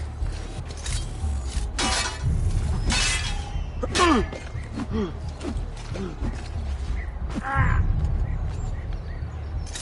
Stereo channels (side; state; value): both; identical; correlation 1.00